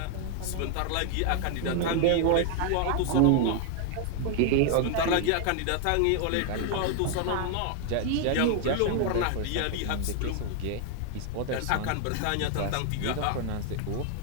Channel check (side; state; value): both; different; correlation 0.00